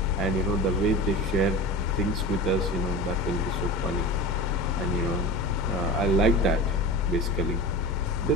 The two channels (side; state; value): both; normal; correlation 0.31